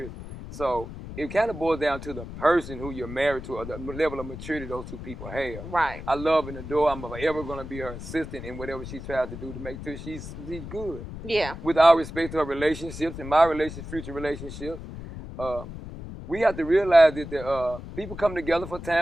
So it kind of boils down to the person who you're married to or the level of maturity those two people have. Right. I love and adore. I'm forever going to be her assistant in whatever she tries to do to make sure she's good. Yeah. With all respect to her relationships and my future relationships, we have to realize that the, people come together for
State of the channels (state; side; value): noise; left; rumble, 11 dB below the sound